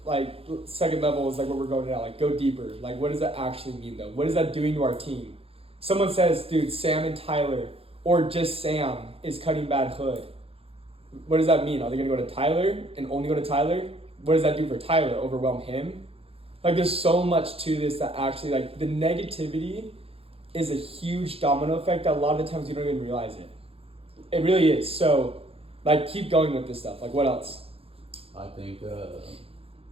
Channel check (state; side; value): late; left; 0.27 ms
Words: Like second level is like what we're going at. Like go deeper. Like what does that actually mean though? What is that doing to our team? Someone says, dude, Sam and Tyler, or just Sam is cutting bad hood. What does that mean? Are they gonna go to Tyler and only go to Tyler? What does that do for Tyler? Overwhelm him? Like there's so much to this that actually like the negativity is a huge domino effect that a lot of the times you don't even realize it. It really is. So like keep going with this stuff. Like what else? I think